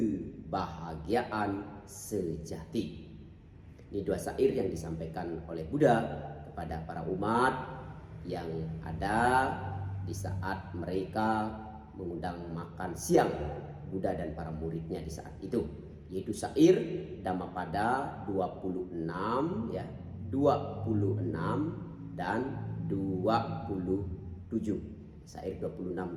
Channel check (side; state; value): both; identical; correlation 1.00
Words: sejati. Ini dua syair yang disampaikan oleh Buddha kepada para umat yang ada di saat mereka mengundang makan siang Buddha dan para muridnya di saat itu, yaitu syair Dhammapada 26 ya, 26 dan 27. Syair 26